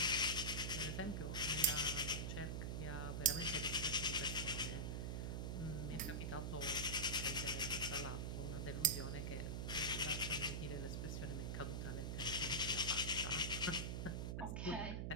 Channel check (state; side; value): noise; right; hum, 2 dB below the sound